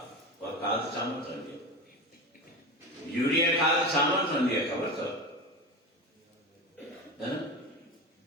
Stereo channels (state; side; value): normal; both; correlation 0.25